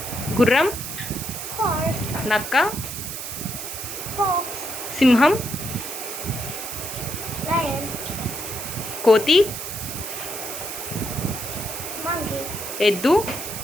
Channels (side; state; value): right; noise; hiss, 7 dB below the sound